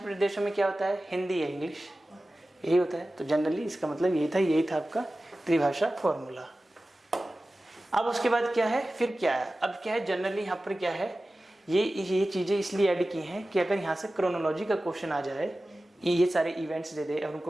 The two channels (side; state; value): both; normal; correlation 0.96